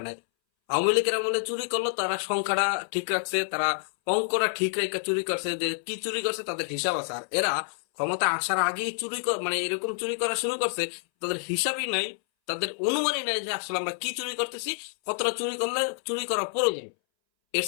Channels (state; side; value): silent; right; 59 dB below the other